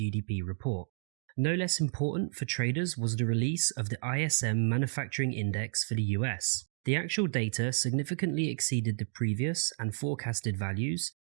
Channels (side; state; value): left; silent; digital silence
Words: report. No less important for traders was the release of the ISM Manufacturing Index for the US. The actual data significantly exceeded the previous and forecasted values,